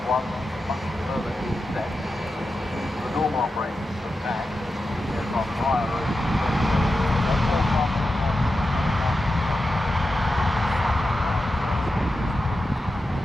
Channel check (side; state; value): both; normal; correlation 0.91